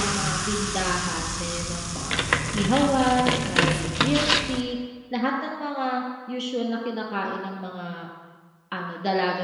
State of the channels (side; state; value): both; identical; correlation 1.00